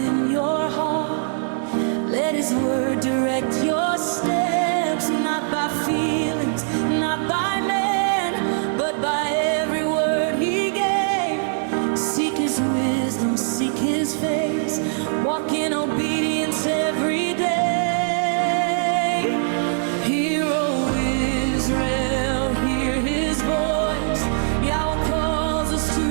your heart. Let His word direct your steps, not by feelings, not by man, but by every word He gave. Seek His wisdom, seek His face, walk in obedience every day. Hear, O Israel, hear His voice. Yahuah calls us to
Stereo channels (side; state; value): left; silent; digital silence